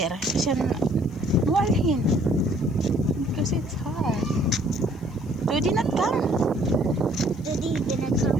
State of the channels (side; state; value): left; noise; hiss, 30 dB below the sound